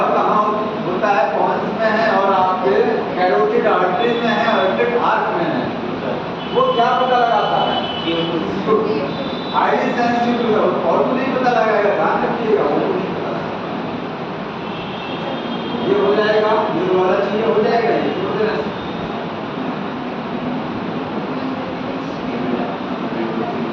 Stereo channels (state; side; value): identical; both; correlation 1.00